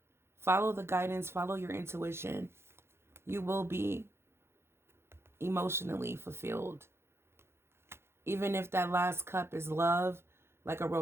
follow the guidance, follow your intuition, you will be emotionally fulfilled. Even if that last cup is love, like a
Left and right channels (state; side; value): late; left; 0.12 ms